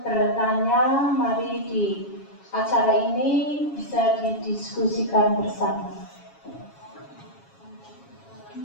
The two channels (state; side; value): late; right; 7.3 ms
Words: mari di acara ini bisa didiskusikan bersama.